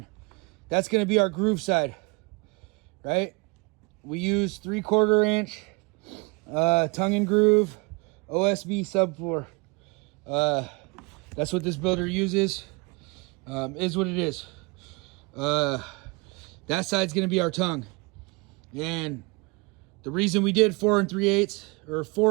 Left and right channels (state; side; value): quieter; left; 28.6 dB